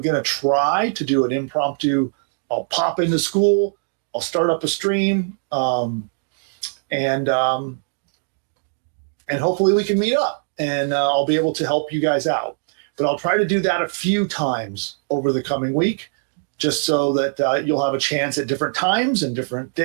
going to try to do an impromptu. I'll pop into school, I'll start up a stream, and hopefully we can meet up, and I'll be able to help you guys out. But I'll try to do that a few times over the coming week, just so that you'll have a chance at different times and different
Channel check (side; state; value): left; silent; digital silence